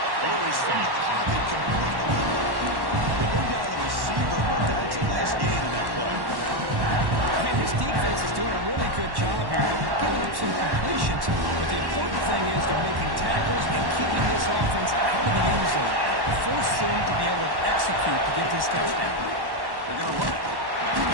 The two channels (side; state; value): left; late; 1.1 ms